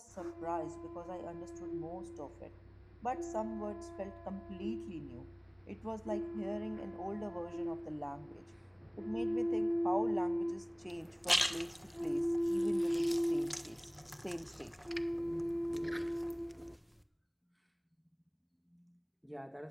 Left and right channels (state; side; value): identical; both; correlation 1.00